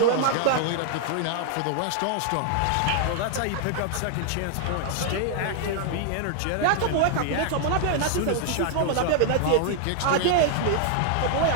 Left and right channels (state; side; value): different; both; correlation 0.00